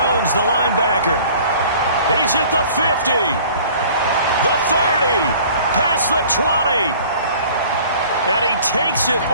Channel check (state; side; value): inverted; both; correlation -0.49